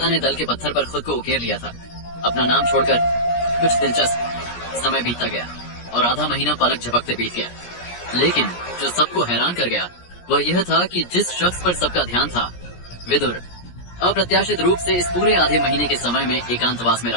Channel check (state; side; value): late; right; 17 ms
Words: ने दल के पत्थर पर खुद को उकेर लिया था। अपना नाम छोड़कर कुछ दिलचस्प। समय बीतता गया और आधा महीना पलक झपकते बीत गया, लेकिन जो सबको हैरान कर गया वह यह था कि जिस शख्स पर सबका ध्यान था, विदुर, अप्रत्याशित रूप से इस पूरे आधे महीने के समय में एकांतवास में